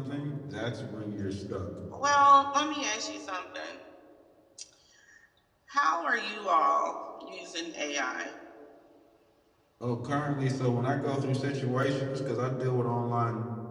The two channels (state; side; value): identical; both; correlation 1.00